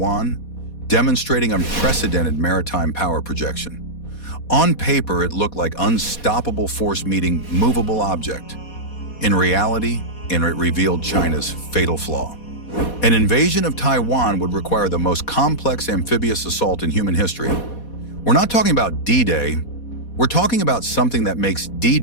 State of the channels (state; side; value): late; right; 4.2 ms